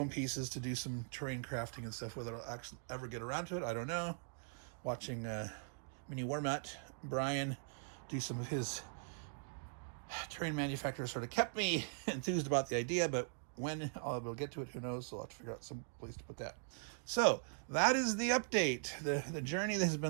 pieces to do some terrain crafting and stuff. Whether I'll actually ever get around to it, I don't know. Watching Mini Warmat Brian do some of his terrain manufacturers sort of kept me enthused about the idea, but when I'll be able to get to it, who knows? So I'll have to figure out some place to put that. So that is the update. The journey that has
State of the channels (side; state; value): left; silent; digital silence